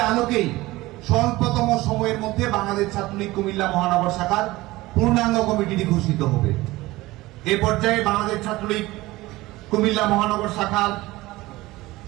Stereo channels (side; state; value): left; quieter; 19.1 dB